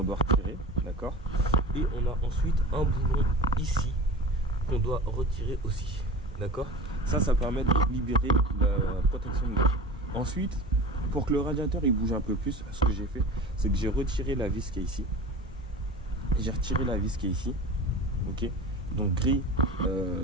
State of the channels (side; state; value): both; normal; correlation 0.35